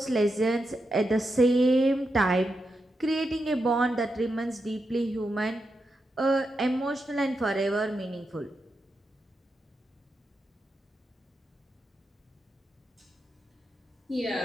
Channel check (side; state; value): both; normal; correlation 0.86